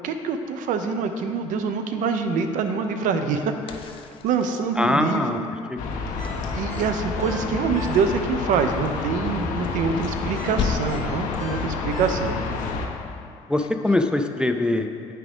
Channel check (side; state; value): both; normal; correlation 0.47